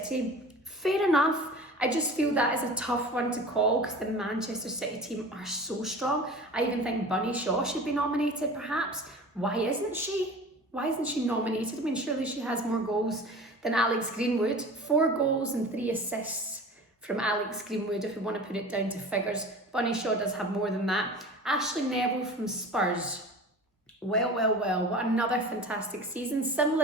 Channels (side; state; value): both; normal; correlation 0.37